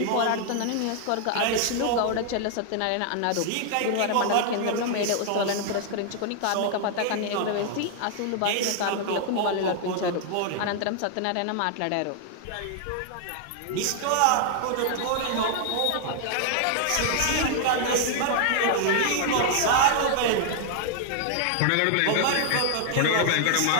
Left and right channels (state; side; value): different; both; correlation 0.00